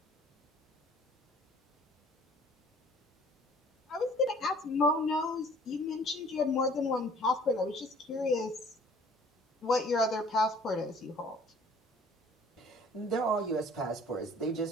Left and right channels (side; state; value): both; normal; correlation 0.53